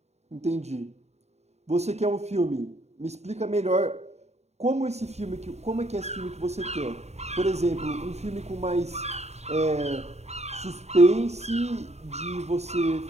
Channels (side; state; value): left; late; 0.32 ms